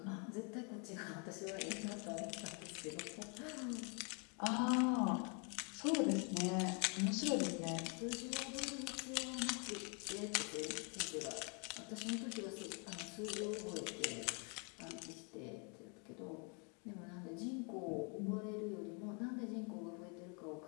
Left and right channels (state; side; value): quieter; right; 36.2 dB